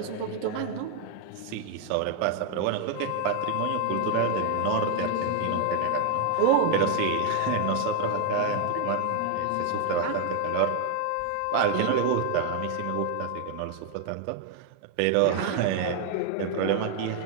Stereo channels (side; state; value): both; different; correlation 0.00